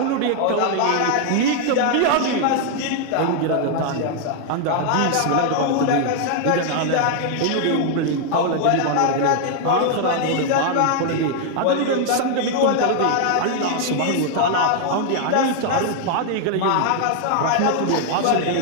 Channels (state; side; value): different; both; correlation 0.00